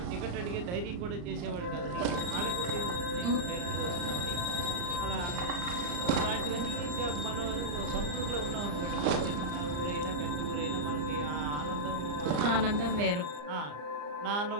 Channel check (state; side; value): late; left; 34 ms